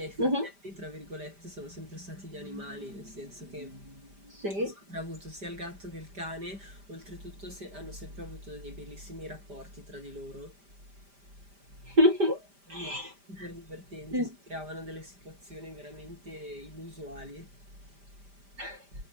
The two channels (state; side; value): late; left; 5.0 ms